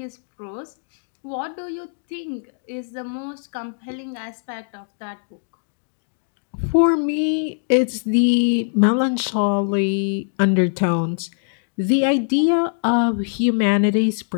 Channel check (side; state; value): right; silent; digital silence